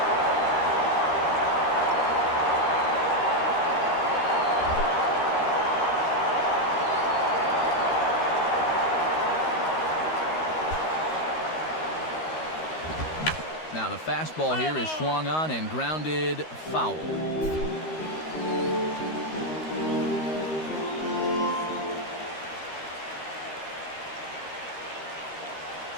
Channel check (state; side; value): late; right; 13 ms